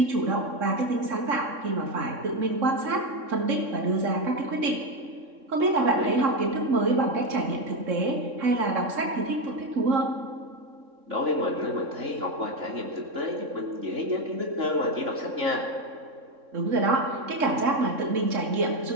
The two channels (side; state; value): left; late; 3.7 ms